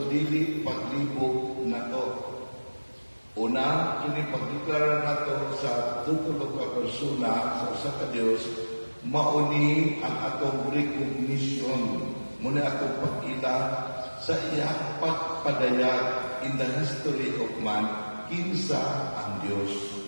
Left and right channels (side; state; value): both; inverted; correlation -1.00